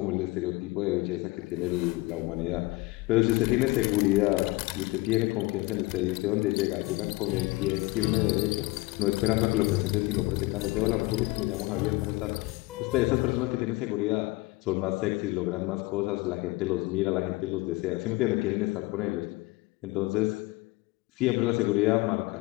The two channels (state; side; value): quieter; right; 22.1 dB